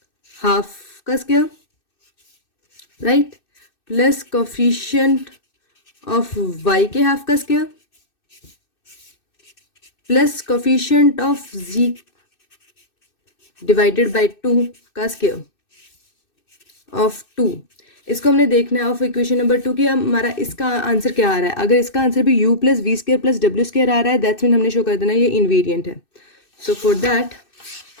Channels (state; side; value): late; right; 2.6 ms